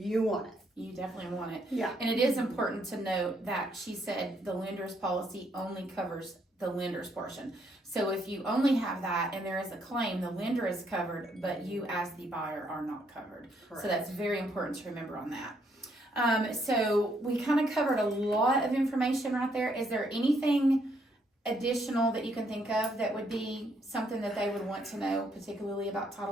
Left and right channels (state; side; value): normal; both; correlation 0.72